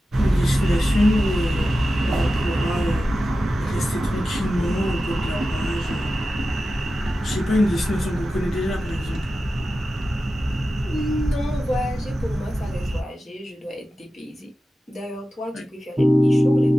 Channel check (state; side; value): normal; both; correlation 0.93